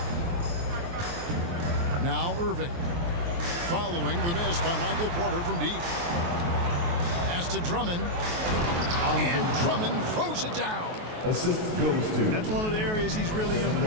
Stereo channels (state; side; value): late; left; 23 ms